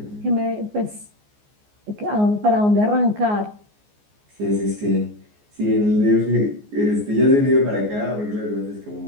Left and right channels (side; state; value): left; late; 14 ms